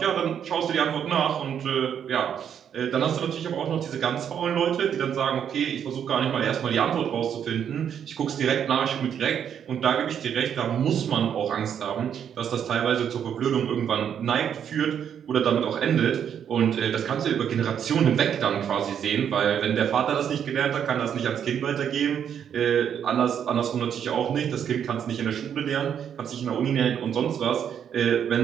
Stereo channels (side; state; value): left; quieter; 8.6 dB